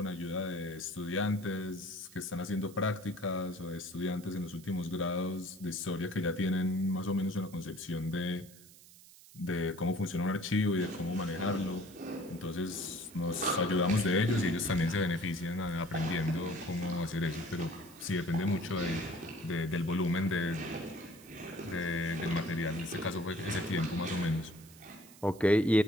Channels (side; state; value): right; noise; hiss, 21 dB below the sound